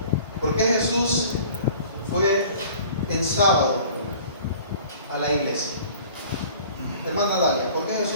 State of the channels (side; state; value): both; inverted; correlation -0.48